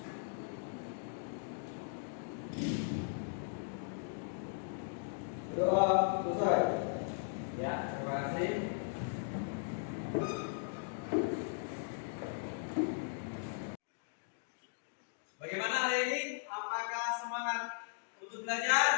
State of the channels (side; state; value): right; silent; digital silence